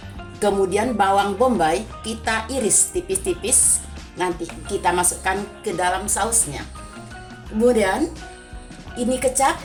Kemudian bawang bombay kita iris tipis-tipis, nanti kita masukkan ke dalam sausnya. Kemudian ini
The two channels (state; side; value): identical; both; correlation 1.00